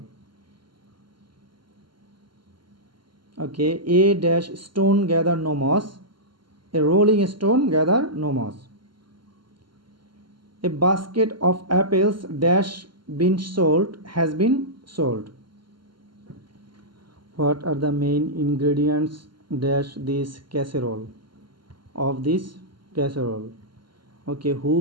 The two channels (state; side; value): late; left; 0.72 ms